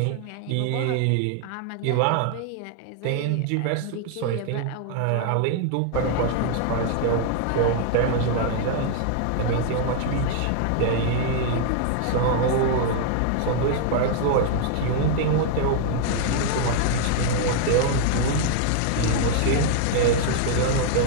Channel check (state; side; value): different; both; correlation 0.00